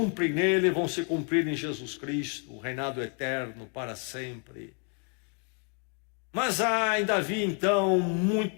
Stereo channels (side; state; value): right; quieter; 39.6 dB